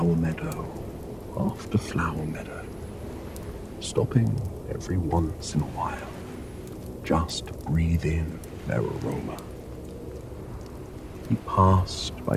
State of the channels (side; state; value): both; identical; correlation 1.00